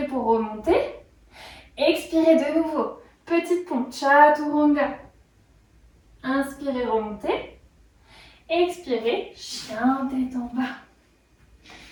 pour remonter. Expirez de nouveau. Petite pompe, chaturanga. Inspirez, remontez. Expirez, chien tête en bas.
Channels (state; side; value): identical; both; correlation 1.00